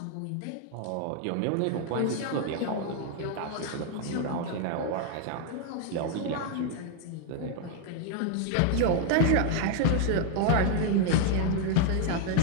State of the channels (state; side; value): different; both; correlation 0.00